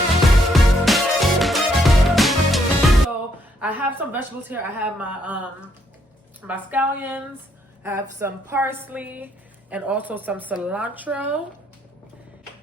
I have some vegetables here. I have my scallions, I have some parsley, and also some cilantro,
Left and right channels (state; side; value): normal; both; correlation 0.72